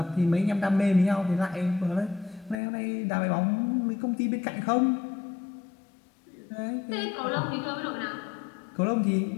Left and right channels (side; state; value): right; drops out; at 2.6 s